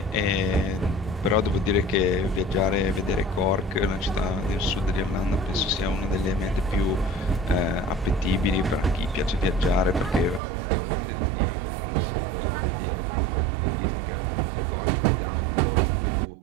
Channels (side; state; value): left; drops out; at 10.4 s